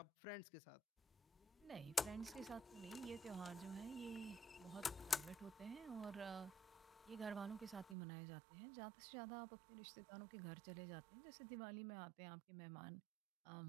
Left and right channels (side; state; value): left; drops out; at 8.0 s